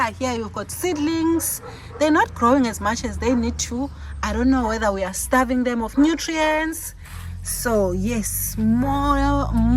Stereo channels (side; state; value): both; identical; correlation 1.00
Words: got seedlings. They're not growing as much as they need to. I don't know whether we are starving them of nutrients. So yes,